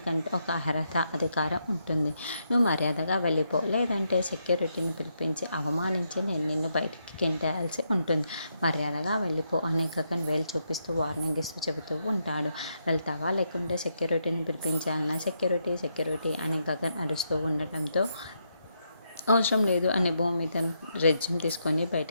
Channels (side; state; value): both; inverted; correlation -0.80